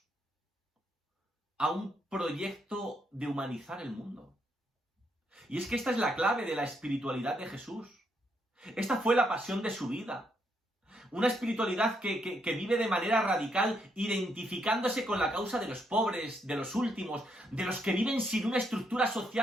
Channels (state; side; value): normal; both; correlation 0.76